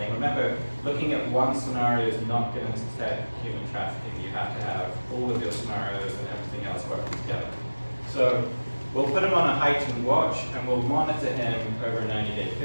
Remember, looking at one scenario is not going to detect human trafficking. You have to have all of your scenarios and everything else working together. So we'll put him on a heightened watch, and we'll monitor him over a 90-day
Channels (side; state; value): both; inverted; correlation -1.00